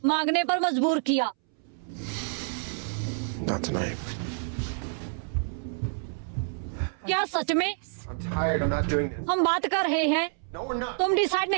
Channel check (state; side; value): silent; left; 59 dB below the other